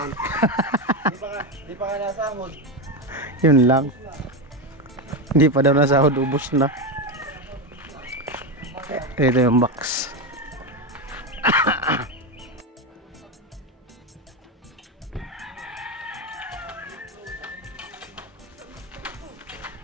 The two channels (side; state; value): both; normal; correlation 0.13